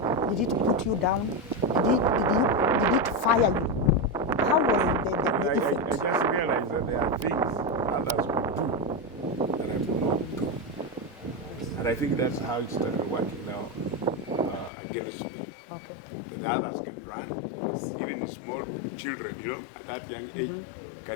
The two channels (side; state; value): right; drops out; at 14.7 s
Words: Did it put you down? Did it fire you? How was the I effect? just realized that there are things others could do that I could not do. And I think that's how it started working now against me. Okay. That others can run, even small children, at that young age,